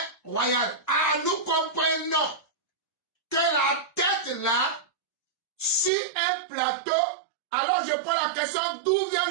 royal. Ah, nous comprenons que la tête là, sur un plateau, alors je pose la question, d'où vient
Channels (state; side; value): drops out; left; at 5.9 s